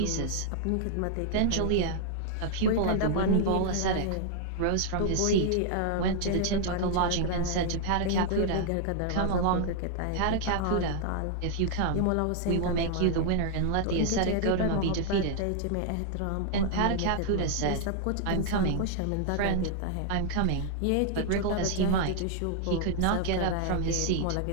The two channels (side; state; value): both; different; correlation -0.01